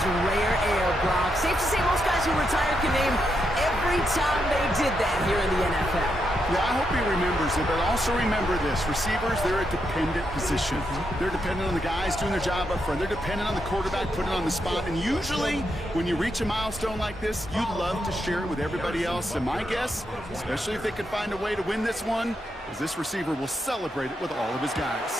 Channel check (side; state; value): both; normal; correlation 0.82